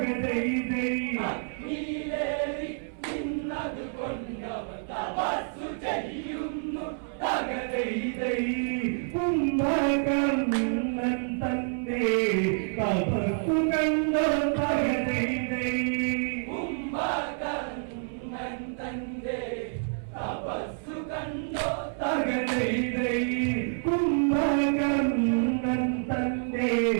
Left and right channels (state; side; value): silent; left; 59 dB below the other